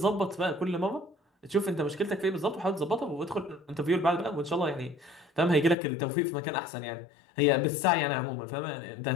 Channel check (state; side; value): drops out; right; at 5.8 s